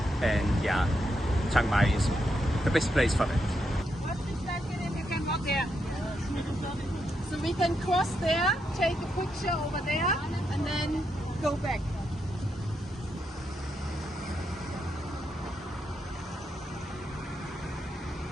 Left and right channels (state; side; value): normal; both; correlation 0.82